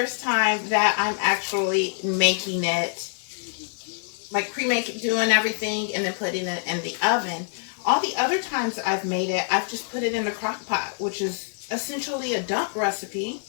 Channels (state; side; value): silent; right; 58 dB below the other